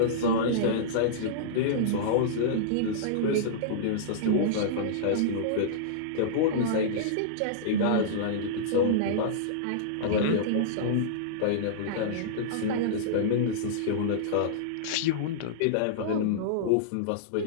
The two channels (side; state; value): both; different; correlation -0.03